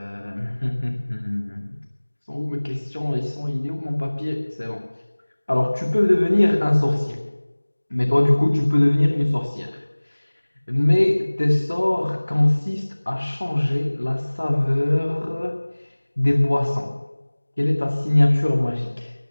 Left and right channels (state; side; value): inverted; both; correlation -1.00